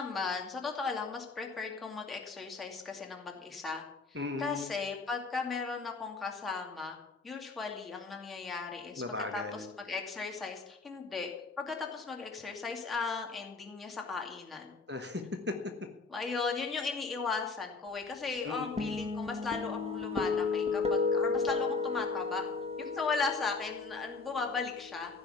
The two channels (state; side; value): quieter; right; 4.2 dB